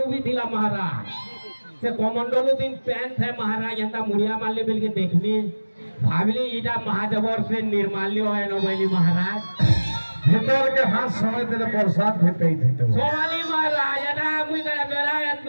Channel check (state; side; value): inverted; both; correlation -1.00